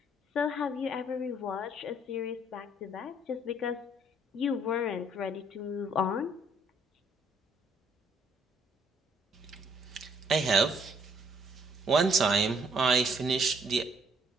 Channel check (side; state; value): both; normal; correlation 0.66